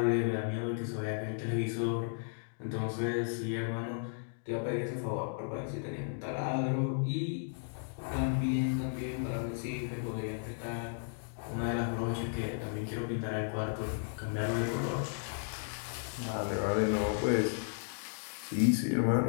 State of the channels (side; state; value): right; silent; digital silence